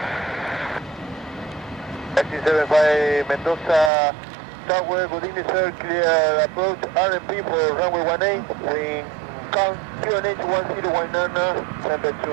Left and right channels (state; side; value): drops out; left; at 3.9 s